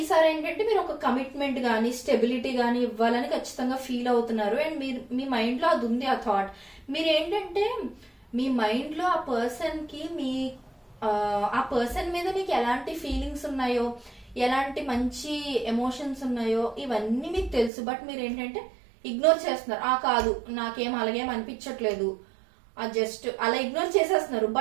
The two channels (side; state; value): left; drops out; at 17.7 s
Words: ఏంటంటే మీరు ఒక కమిట్మెంట్ గానీ స్టెబిలిటీ గానీ ఇవ్వాలని ఖచ్చితంగా ఫీల్ అవుతున్నారు. అండ్ మీరు మీ మైండ్ లో అది ఉంది ఆ థాట్. మీరు ఏంటంటే మీ మైండ్ లో ఆ పర్సన్ కి ఆ పర్సన్ మీద మీకు ఎలాంటి ఫీలింగ్స్ ఉన్నాయో, ఎలాంటి మంచి ఎమోషన్స్ ఉన్నాయో ఇవన్నీ మీకు తెలుసు. బట్ మీరు ఏంటంటే ఇగ్నోర్ చేస్తున్నారు. కాదు నాకేం అలాగేం అనిపించట్లేదు, జస్ట్ అలా ఇగ్నోర్ చేసేస్తున్నారు.